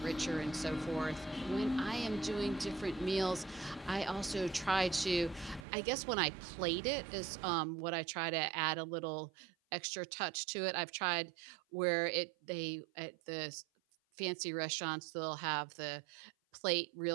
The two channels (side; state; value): left; drops out; at 5.7 s